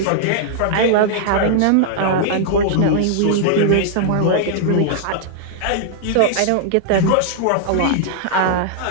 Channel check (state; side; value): different; both; correlation -0.01